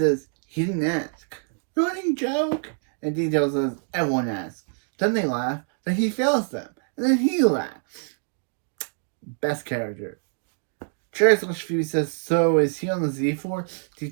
he didn't ask. Running joke. And Detail says, everyone asks. Then they laugh. Then he fails them. And then he laughs. Best character. Cherry / Phoebe says, so is he on the Z-Force?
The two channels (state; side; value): silent; left; 61 dB below the other